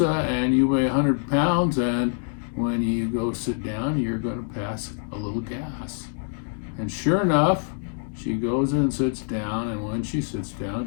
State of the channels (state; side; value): silent; right; 60 dB below the other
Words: and you weigh 100 pounds, and when you go sit down, you're going to pass a little gas." And sure enough, she goes and sits down, and when she sits down,